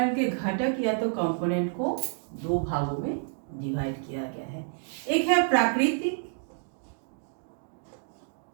के घटक या तो कंपोनेंट को दो भागों में डिवाइड किया गया है। एक है प्राकृतिक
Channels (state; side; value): silent; left; digital silence